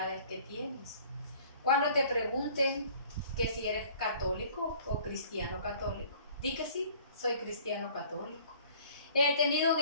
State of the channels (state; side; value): inverted; both; correlation -0.52